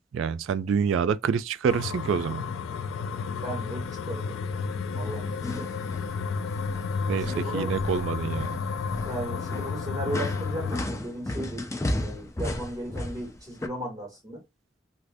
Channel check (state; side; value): normal; both; correlation 0.50